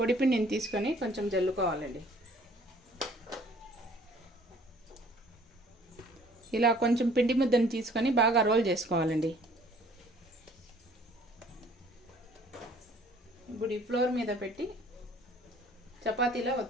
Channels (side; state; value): both; normal; correlation 0.56